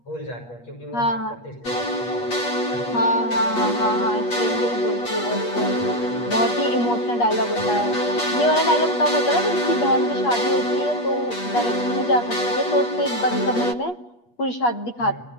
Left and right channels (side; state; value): right; late; 8.3 ms